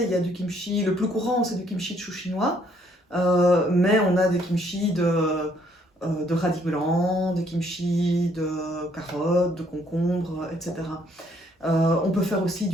il y a du kimchi, le plus courant, c'est du kimchi de chou chinois. Mais on a des kimchi de radis blancs, des kimchi de carottes, de concombres, etc. On peut faire aussi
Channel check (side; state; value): both; normal; correlation 0.66